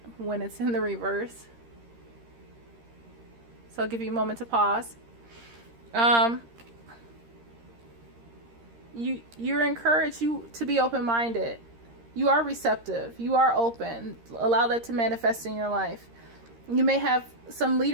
when it's in the reverse. So I'll give you a moment to pause. You're encouraged to be open-minded. You are receptive. You are open. Allow that to manifest in your life. You may have some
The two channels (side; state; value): left; late; 13 ms